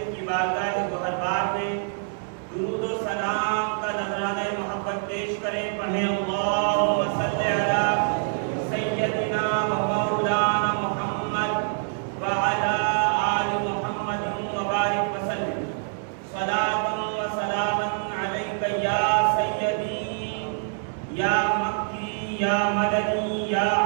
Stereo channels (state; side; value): silent; left; digital silence